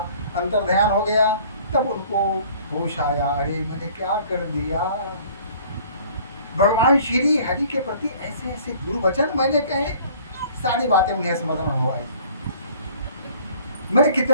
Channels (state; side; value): inverted; both; correlation -0.52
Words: अंतर ध्यान हो गया। तब उनको होश आया, अरे मैंने क्या कर दिया। भगवान श्री हरि के प्रति ऐसे ऐसे दुर्वचन मैंने कहे, सारी बातें उन्हें स्मरण हो आई। मैंने